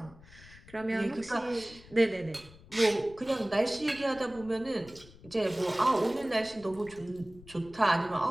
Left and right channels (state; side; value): noise; left; rumble, 21 dB below the sound